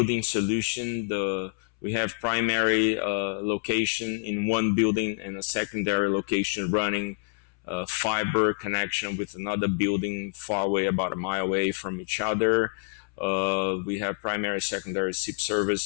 solution. We have primary location in one building and a secondary location running fiber connection with another building far away, about a mile away from each other. We have primary, secondary SIP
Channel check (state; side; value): silent; right; 60 dB below the other